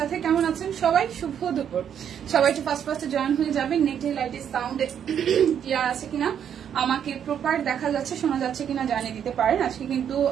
কেমন আছেন সবাই? শুভ দুপুর। সবাই একটু ফার্স্টে জয়েন হয়ে যাবেন। নেটে লাইটে সাউন্ডে ক্লিয়ার আছে কিনা, আমাকে প্রপার দেখা যাচ্ছে, শোনা যাচ্ছে কিনা জানিয়ে দিতে পারেন। আজকে কিন্তু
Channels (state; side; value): quieter; left; 8.8 dB